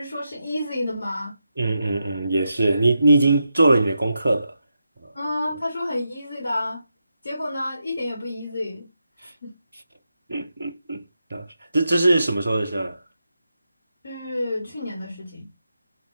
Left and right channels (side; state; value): both; inverted; correlation -0.86